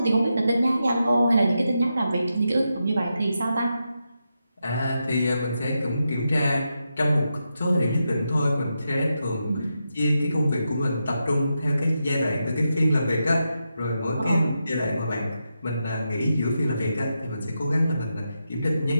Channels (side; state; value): both; inverted; correlation -0.87